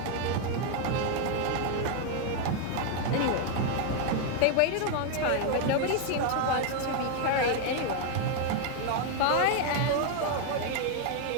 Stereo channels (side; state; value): both; different; correlation 0.01